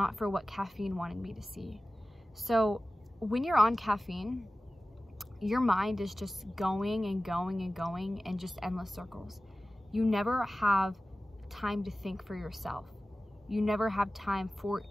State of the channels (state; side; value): normal; both; correlation 0.96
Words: for what caffeine wanted me to see. So when you're on caffeine, your mind is just going and going and going in just endless circles. You never have time to think for yourself. You never have time for